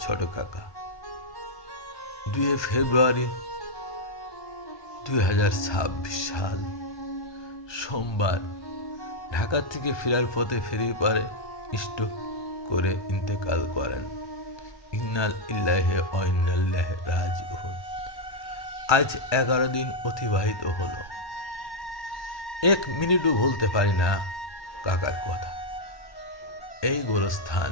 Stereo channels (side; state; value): right; late; 1.2 ms